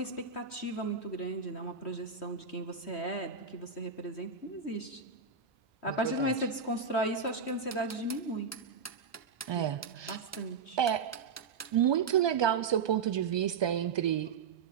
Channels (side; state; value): left; quieter; 5.7 dB